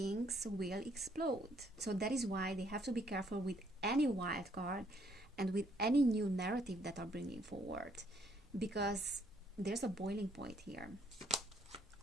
will explode. So that is why they have to be careful with any wild card and with any new narrative that are bringing forward, because there's a boiling point here.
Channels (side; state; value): both; normal; correlation 0.68